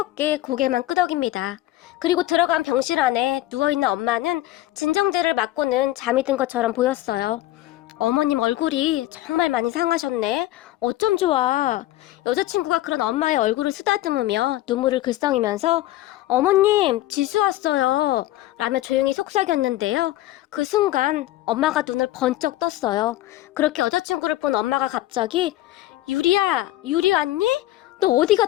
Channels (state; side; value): quieter; right; 16.0 dB